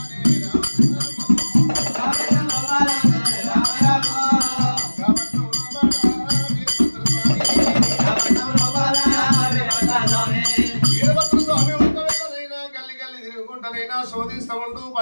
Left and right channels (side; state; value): both; inverted; correlation -1.00